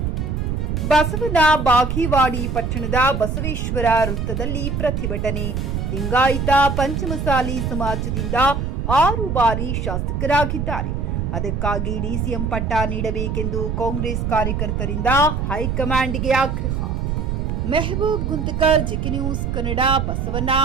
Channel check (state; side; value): noise; right; rumble, 1 dB below the sound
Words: ಬಸವನ ಬಾಗೇವಾಡಿ ಪಟ್ಟಣದ ಬಸವೇಶ್ವರ ವೃತ್ತದಲ್ಲಿ ಪ್ರತಿಭಟನೆ. ಲಿಂಗಾಯತ ಪಂಚಮಸಾಲಿ ಸಮಾಜದಿಂದ 6 ಬಾರಿ ಶಾಸಕರಾಗಿದ್ದಾರೆ. ಅದಕ್ಕಾಗಿ ಡಿಸಿಎಂ ಪಟ್ಟ ನೀಡಬೇಕೆಂದು ಕಾಂಗ್ರೆಸ್ ಕಾರ್ಯಕರ್ತರಿಂದ ಹೈಕಮಾಂಡ್ಗೆ ಆಗ್ರಹ. Mehboob Guntakal, GK news Kannada, Basavana